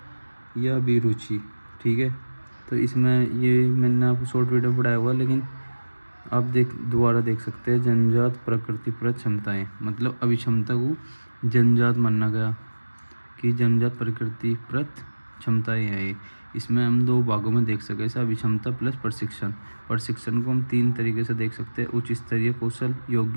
या अभिरुचि, ठीक है। तो इसमें ये मैंने आपको शॉर्ट वीडियो पढ़ाया हुआ है, लेकिन आप दोबारा देख सकते हैं। जन्मजात प्रकृतिप्रत क्षमताएं, मतलब अभिक्षमता को जन्मजात माना गया कि जन्मजात प्रकृतिप्रत क्षमताएं हैं ये। इसमें हम दो भागों में देख सकते हैं, अभिक्षमता प्लस प्रशिक्षण। प्रशिक्षण को हम तीन तरीके से देख सकते हैं: उच्च स्तरीय कौशल,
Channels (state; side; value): inverted; both; correlation -1.00